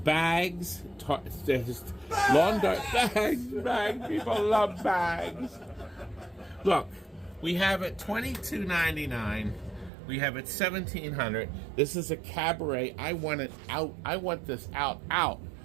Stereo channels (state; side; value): drops out; left; at 9.9 s